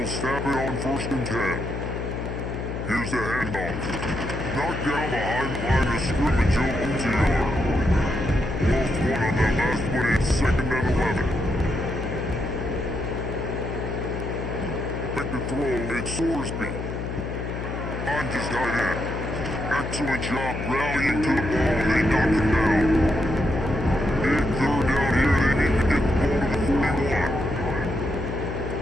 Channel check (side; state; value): left; noise; hum, 5 dB below the sound